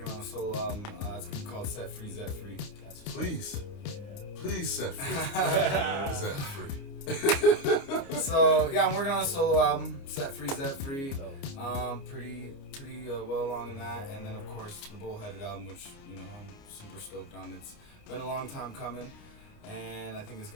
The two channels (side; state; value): right; late; 29 ms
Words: on a solo album. It's gonna be called Set Free, Zet Free. Please set free. Zet Free. So yeah, I'm working on a solo album, Set Free, Zet Free. Pretty well along in that, and then of course the Bullheaded album, which I'm super stoked on. It's been a long time coming, and I think it's